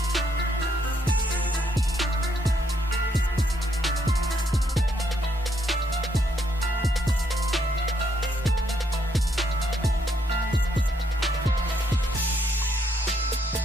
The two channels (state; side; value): normal; both; correlation 0.73